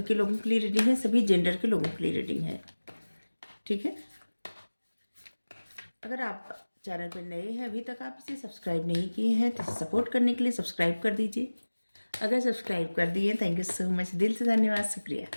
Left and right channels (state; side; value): inverted; both; correlation -1.00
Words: के लोगों के लिए रीडिंग है, सभी जेंडर के लोगों के लिए रीडिंग है, ठीक है। अगर आप चैनल पर नए हैं, अभी तक आप इसे सब्सक्राइब नहीं किए हैं, तो सपोर्ट करने के लिए सब्सक्राइब कर दीजिए। अगर सब्सक्राइब कर दिए, थैंक यू सो मच, दिल से धन्यवाद, शुक्रिया।